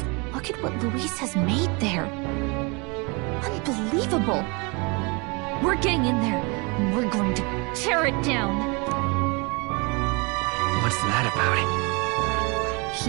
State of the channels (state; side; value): quieter; left; 29.8 dB